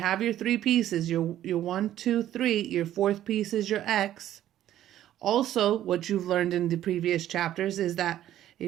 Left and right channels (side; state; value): left; quieter; 12.4 dB